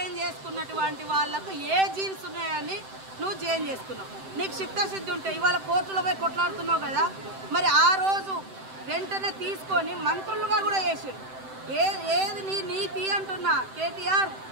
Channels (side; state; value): left; late; 7.8 ms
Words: చేసుకున్నటువంటి వాళ్ళకు ఏ జీన్స్ ఉన్నాయని నువ్వు జైన్ చేసుకున్నావు. నీకు చిత్తశుద్ధి ఉంటే ఇవాళ కోర్టులో పోయి కొట్లాడుతున్నావు కదా, మరి ఆ రోజు వెంటనే తీసుకొని మంత్రులుగా కూడా చేసారు. ఏది నీ నీతి అంటున్నా కేటీఆర్,